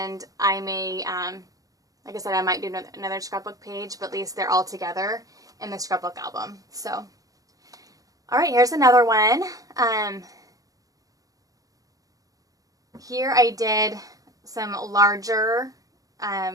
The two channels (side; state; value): left; late; 0.17 ms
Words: I may, like I said, I might do another scrapbook page, but at least they're all together in the scrapbook album. So, all right, here's another one. Here I did some larger